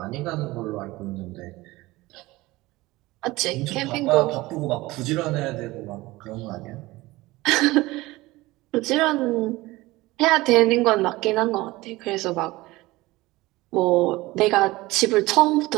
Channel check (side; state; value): left; quieter; 19.7 dB